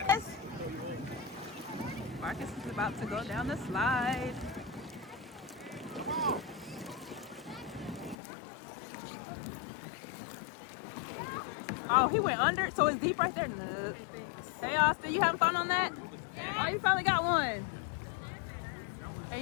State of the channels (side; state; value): right; drops out; at 8.2 s